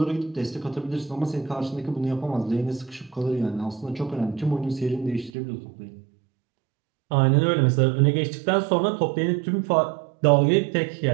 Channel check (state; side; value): drops out; left; at 5.3 s